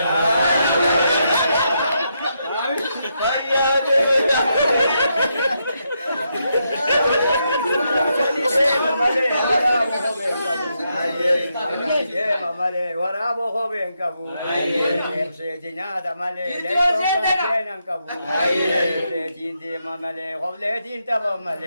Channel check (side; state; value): both; inverted; correlation -0.81